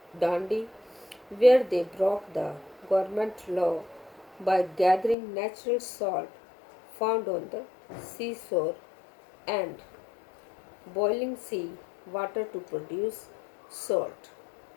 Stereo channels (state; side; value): drops out; right; at 5.2 s